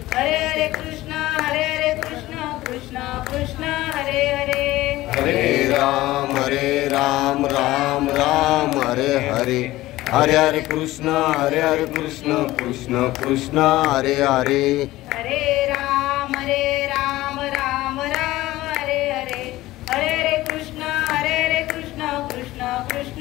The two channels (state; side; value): quieter; right; 17.1 dB